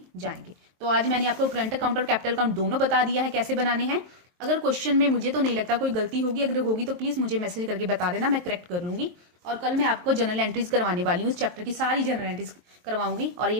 जाएंगे। तो आज मैंने आपको करंट अकाउंट और कैपिटल अकाउंट दोनों बता दिया है कैसे बनाने हैं। अगर क्वेश्चन में मुझे तो नहीं लगता कोई गलती होगी, अगर होगी तो प्लीज मुझे मैसेज करके बता देना, मैं करेक्ट कर लूंगी। और कल मैं आपको जनरल एंट्रीज करवाने वाली हूँ, इस चैप्टर की सारी जनरल एंट्रीज करवाऊंगी, और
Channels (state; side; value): late; left; 23 ms